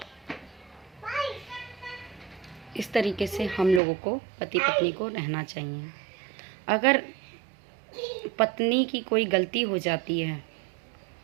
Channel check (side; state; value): left; drops out; at 3.8 s